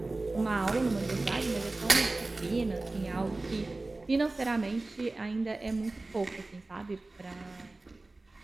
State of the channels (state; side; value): quieter; left; 3.1 dB